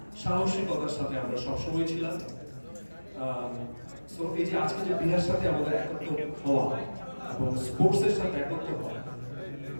সাহসিকতার সাথে আমরা সবসময় ছিলাম। সো এই যে আজকে যে বিহার সাথে আমাদের একত্র হওয়া এবং স্পোর্টসের সাথে একত্র হওয়া,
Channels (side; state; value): both; inverted; correlation -1.00